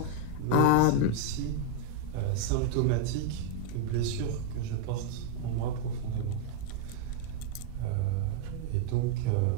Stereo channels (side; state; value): both; different; correlation -0.01